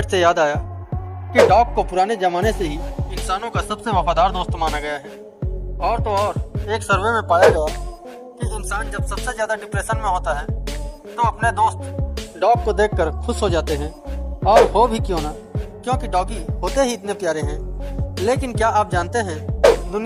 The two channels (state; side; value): identical; both; correlation 1.00